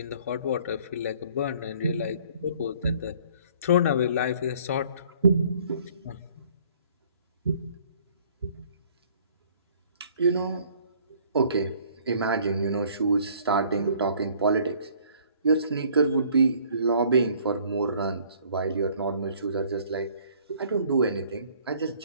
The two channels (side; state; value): both; inverted; correlation -0.57